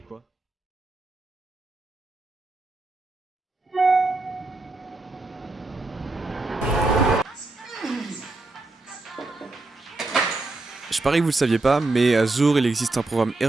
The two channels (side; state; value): left; quieter; 3.1 dB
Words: ? Je parie que vous le saviez pas, mais à Zour, il existe un programme